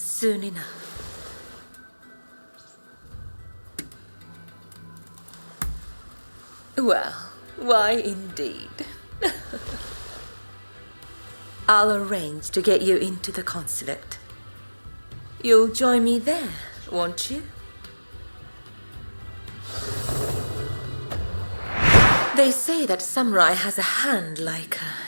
enough. Well, why indeed. I'll arrange to get you into the consulate. You'll join me there, won't you? They say that samurai has a hand like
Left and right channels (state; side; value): inverted; both; correlation -1.00